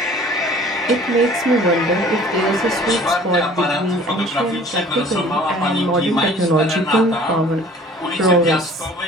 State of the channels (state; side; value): normal; both; correlation 0.50